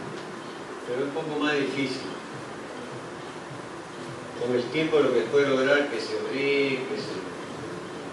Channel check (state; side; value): identical; both; correlation 1.00